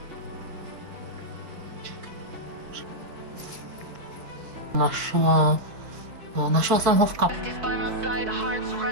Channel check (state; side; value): late; left; 4.7 ms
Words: ráž. Našla jsem ho v kapse.